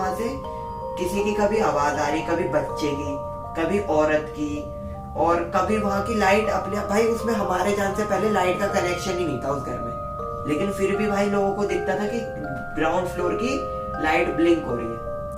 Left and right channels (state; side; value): identical; both; correlation 1.00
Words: से किसी की कभी आवाज आ रही, कभी बच्चे की, कभी औरत की, और कभी वहां की लाइट अपने भाई, उसमें हमारे जान से पहले लाइट का कनेक्शन ही नहीं था उस घर में, लेकिन फिर भी भाई लोगों को दिखता था कि ग्राउंड फ्लोर की लाइट ब्लिंक हो रही है।